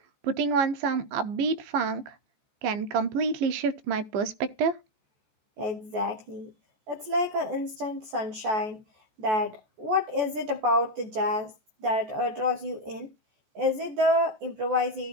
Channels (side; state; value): left; late; 14 ms